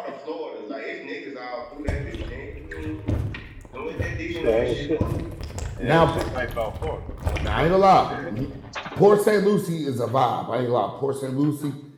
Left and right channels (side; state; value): both; identical; correlation 1.00